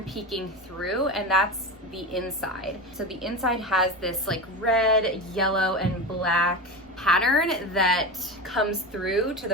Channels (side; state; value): right; noise; rumble, 30 dB below the sound